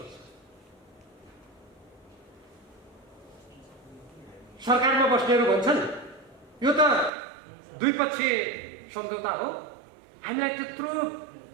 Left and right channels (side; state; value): left; drops out; at 7.1 s